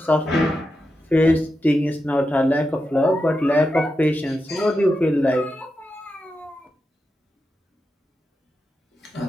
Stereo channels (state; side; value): normal; both; correlation 0.88